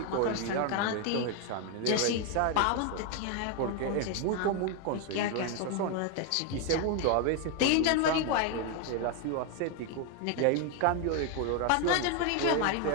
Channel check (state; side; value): different; both; correlation 0.01